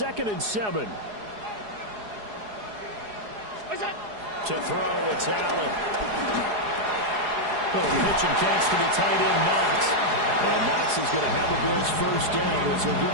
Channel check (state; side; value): late; left; 4.8 ms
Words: and 7. To throw, it's Allen. Little pitch and catch to the tight end, Knox. And Knox is going to have the Bills 1st down as he'll get